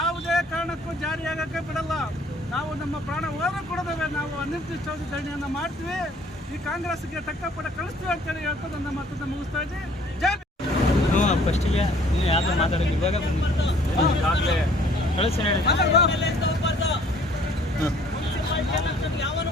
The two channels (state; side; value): normal; both; correlation 0.57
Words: ಕಾರಣಕ್ಕೂ ಜಾರಿಯಾಗಕ್ಕೆ ಬಿಡಲ್ಲ. ನಾವು ನಮ್ಮ ಪ್ರಾಣ ಹೋದರೂ ಕೊಡೋದವೆ ನಾವು ಅನಿರ್ದಿಷ್ಟಾವಧಿ ಧರಣಿಯನ್ನು ಮಾಡ್ತೀವಿ. ಈ ಕಾಂಗ್ರೆಸ್ಗೆ ತಕ್ಕ ಪಡ ಕಳಿಸ್ತೀವಿ ಅಂತೇಳಿ ಹೇಳ್ತಾ ನನ್ನ ಮಾತನ್ನು ಮುಗಿಸ್ತಾ ಇದ್ದೀವಿ. ಜೈ ಫಸ್ಟಿಗೆ ಯಾರು ಮಾತಾಡೋದು ಇವಾಗ ಈಗಾಗಲೇ ಕಳಿಸಿ